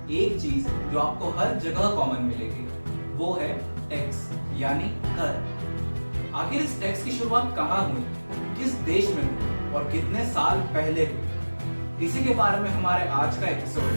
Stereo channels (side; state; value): both; inverted; correlation -1.00